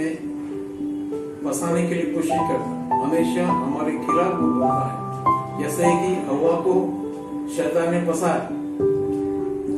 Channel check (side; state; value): both; identical; correlation 1.00